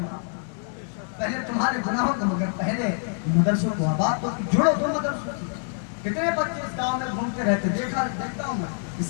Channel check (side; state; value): right; silent; 61 dB below the other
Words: گا، پہلے تمہارے گناہوں کو، مگر پہلے مدرسوں کو آباد تو جڑو دو مدرسوں سے۔ کتنے بچے اس گاؤں میں گھومتے رہتے، دیکھتا ہوں میں،